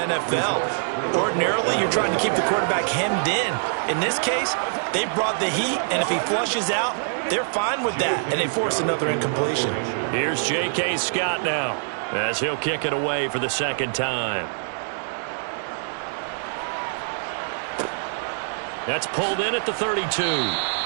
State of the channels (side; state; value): left; silent; digital silence